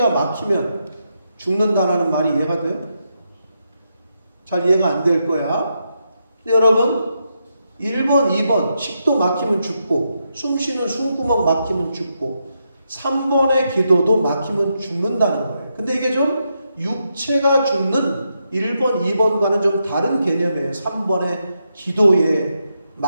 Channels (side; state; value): both; inverted; correlation -0.83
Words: 막히면 죽는다라는 말이 이해가 돼요? 잘 이해가 안 될 거야. 근데 여러분 1번, 2번 식도 막히면 죽고 숨 쉬는 숨구멍 막히면 죽고 3번의 기도도 막히면 죽는다는 거예요. 근데 이게 좀 육체가 죽는 1번, 2번과는 좀 다른 개념이에요. 3번의 기도에